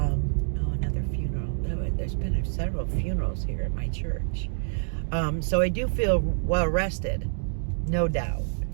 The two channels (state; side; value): silent; left; digital silence